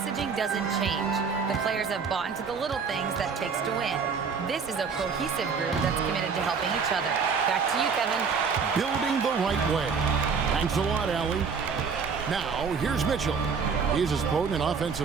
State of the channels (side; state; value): left; quieter; 5.7 dB